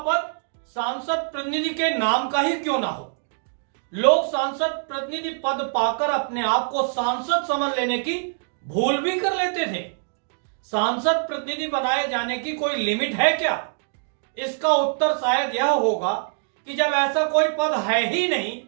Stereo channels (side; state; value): left; silent; digital silence